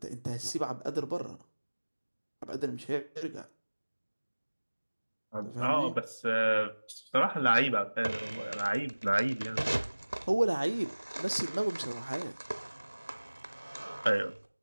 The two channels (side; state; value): both; inverted; correlation -1.00